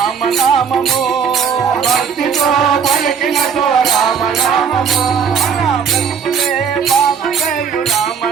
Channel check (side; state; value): left; quieter; 6.8 dB